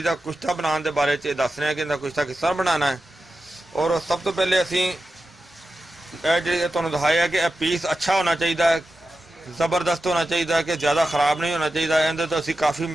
का कुश्ता बनाने के बारे च दस रहे हैं कि इहदा कुश्ता किस तरह बनाना है। और सब तो पहले असीं जो तुहानूं दिखाया कि पीस अच्छा होना चाहिए, ज़बरदस्त होना चाहिए कि ज़्यादा खराब नहीं होना चाहिए। इहदे तो असीं काफ़ी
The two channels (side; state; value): both; normal; correlation 0.92